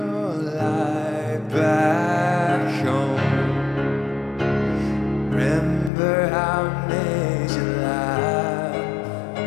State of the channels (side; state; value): right; drops out; at 5.9 s